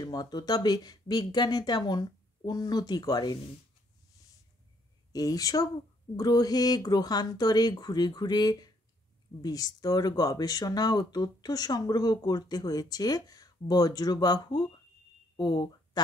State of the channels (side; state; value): both; normal; correlation 0.69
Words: মতো, তবে বিজ্ঞানে তেমন উন্নতি করেনি। এইসব গ্রহে গ্রহান্তরে ঘুরে ঘুরে বিস্তর গবেষণা ও তথ্য সংগ্রহ করতে হয়েছে বজ্রবাহু ও